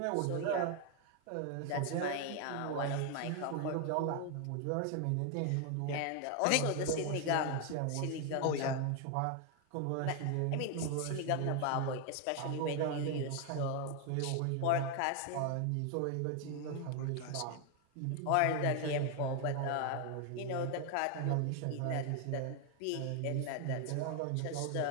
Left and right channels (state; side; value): different; both; correlation 0.01